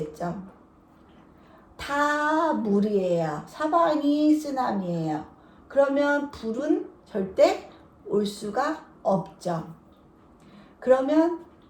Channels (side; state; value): both; identical; correlation 1.00